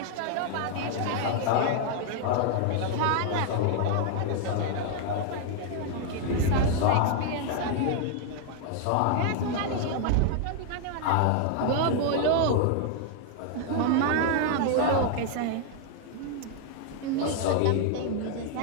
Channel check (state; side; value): different; both; correlation 0.00